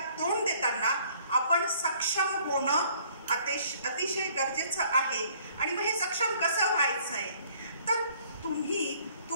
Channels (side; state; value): both; inverted; correlation -0.59